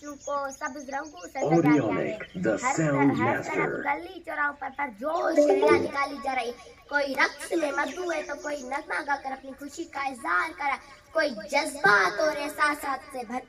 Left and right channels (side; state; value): both; identical; correlation 1.00